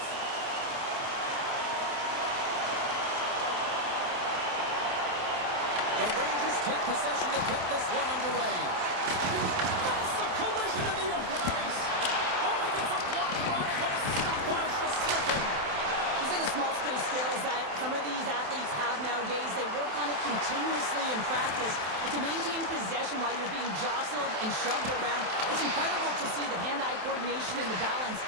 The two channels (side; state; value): left; late; 27 ms